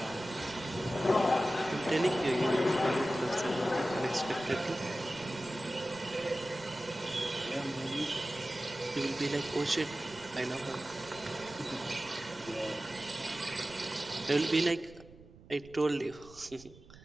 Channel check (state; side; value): noise; right; rumble, 21 dB below the sound